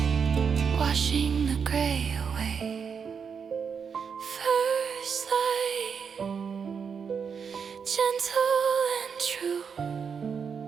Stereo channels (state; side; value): quieter; left; 6.4 dB